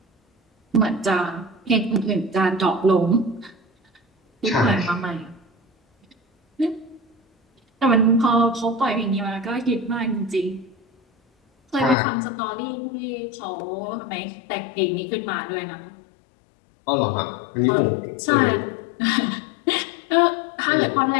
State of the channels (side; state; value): right; drops out; at 12.0 s